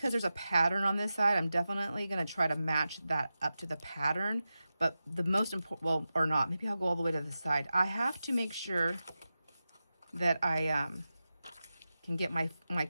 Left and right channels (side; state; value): both; inverted; correlation -0.92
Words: there's a pattern on this side, I'm definitely going to try to match that up to the pattern. But the most important, well, or not, maybe I'll go all the way to the side. I have to make sure that I can get my